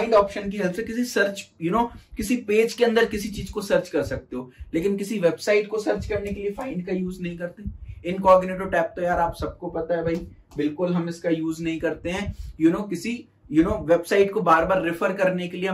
ऑप्शन की हेल्प से किसी सर्च किसी पेज के अंदर किसी चीज को सर्च कर सकते हो, लेकिन किसी वेबसाइट को सर्च करने के लिए फाइंड का यूज नहीं करते। इनकॉग्निटो टैब तो यार आप सबको पता है भाई, बिल्कुल हम इसका यूज नहीं करते हैं। किसी वेबसाइट को बार बार रेफर करने के लिए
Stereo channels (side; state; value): both; identical; correlation 1.00